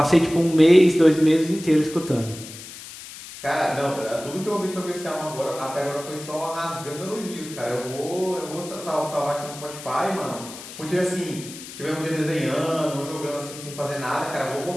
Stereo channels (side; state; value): left; noise; hiss, 14 dB below the sound